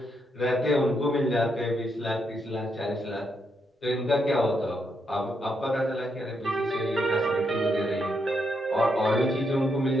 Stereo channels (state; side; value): normal; both; correlation 0.79